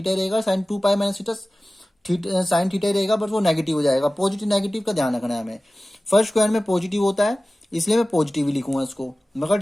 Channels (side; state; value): both; normal; correlation 0.97